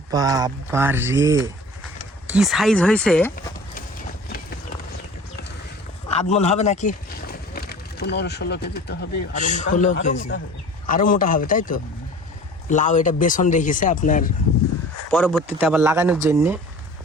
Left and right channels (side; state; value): both; normal; correlation 0.42